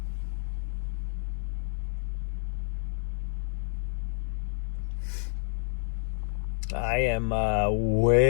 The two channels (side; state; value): right; silent; digital silence